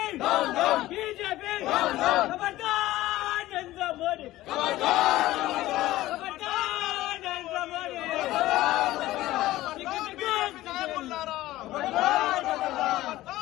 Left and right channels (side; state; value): right; quieter; 16.2 dB